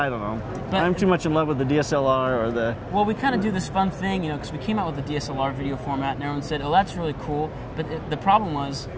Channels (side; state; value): both; identical; correlation 1.00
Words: don't know. But I'm too much in love with the DSLR or the... Well, we kind of do this fun thing, you know, because we came out with the DSLR video format and everyone said, oh, that's really cool. But the problem was